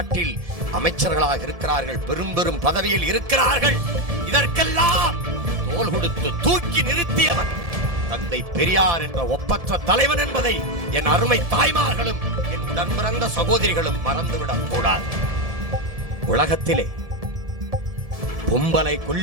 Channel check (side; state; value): left; late; 1.7 ms